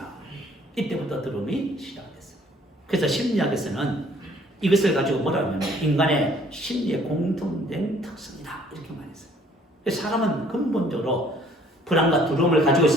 이때부터 두려움이 시작됐어요. 그래서 심리학에서는 이것을 가지고 뭐라 하면 인간의 심리의 공통된 특성이다 이렇게 말했어요. 사람은 근본적으로 불안과 두려움을 가지고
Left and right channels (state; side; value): normal; both; correlation 0.59